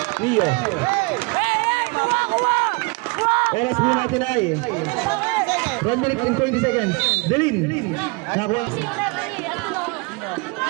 Nio. Oras mo natin ay 1 minute and 20 seconds. Delin. Nakuha.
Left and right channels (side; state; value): left; quieter; 29.1 dB